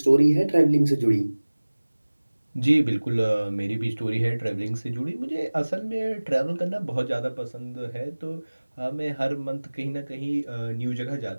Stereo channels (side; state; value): both; inverted; correlation -1.00